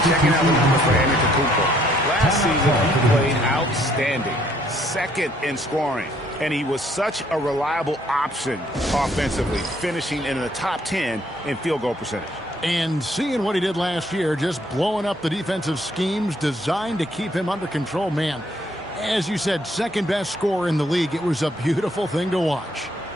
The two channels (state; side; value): normal; both; correlation 0.66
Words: checking out the numbers for Antetokounmpo. Last season, he played outstanding. Second in scoring. And he was such a reliable option offensively, finishing in the top 10 in field goal percentage. And seeing what he did last year, just blowing up the defensive schemes designed to keep him under control, man. As you said, second best scorer in the league. It was a beautiful thing to watch.